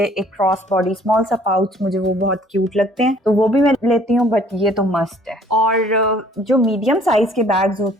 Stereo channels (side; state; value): both; normal; correlation 0.57